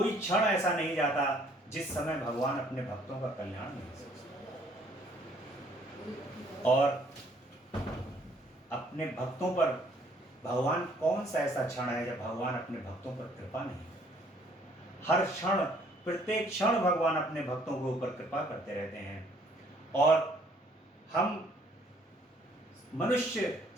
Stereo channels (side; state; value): both; normal; correlation 0.62